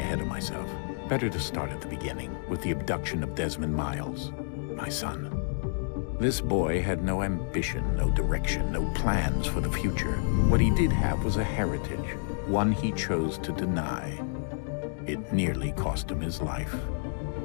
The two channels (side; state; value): right; silent; digital silence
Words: of myself. Better to start at the beginning, with the abduction of Desmond Miles, my son. This boy had no ambition, no direction, no plans for the future. What he did have was a heritage, one he chose to deny. It nearly cost him his life.